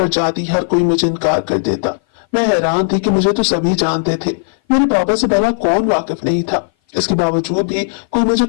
जाती हर कोई मुझे इनकार कर देता। मैं हैरान थी कि मुझे तो सभी जानते थे, मेरे बाबा से भला कौन वाकिफ नहीं था। इसके बावजूद भी कोई मुझे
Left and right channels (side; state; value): right; silent; 57 dB below the other